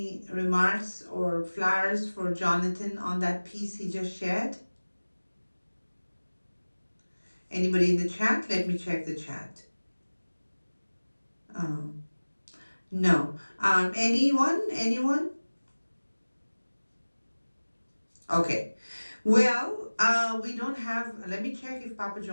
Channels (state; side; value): inverted; both; correlation -1.00